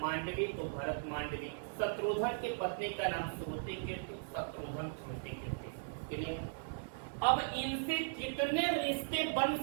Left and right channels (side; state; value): left; silent; 52 dB below the other